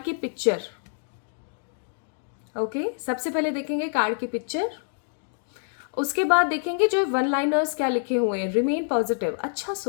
की पिक्चर, ओके सबसे पहले देखेंगे कार्ड की पिक्चर, उसके बाद देखेंगे जो 1 लाइनर्स क्या लिखे हुए हैं। रिमेन पॉजिटिव, अच्छा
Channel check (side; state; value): right; silent; digital silence